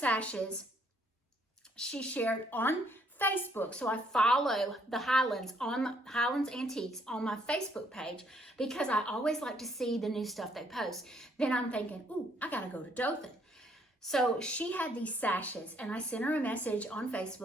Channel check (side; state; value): both; normal; correlation 0.68